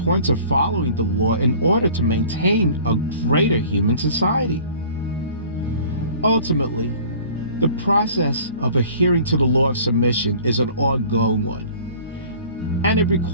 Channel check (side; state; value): both; inverted; correlation -0.48